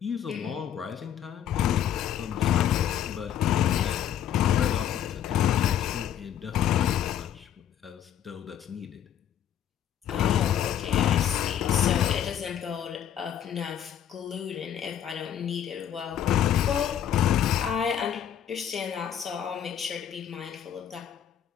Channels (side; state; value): right; quieter; 9.9 dB